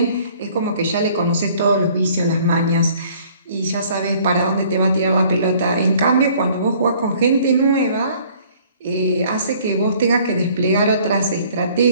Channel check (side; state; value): both; inverted; correlation -0.56